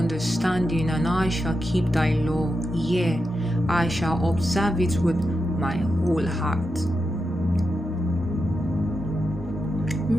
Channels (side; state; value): both; normal; correlation 0.88